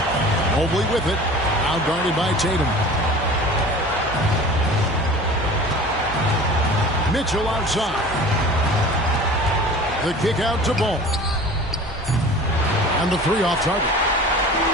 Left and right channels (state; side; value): normal; both; correlation 0.41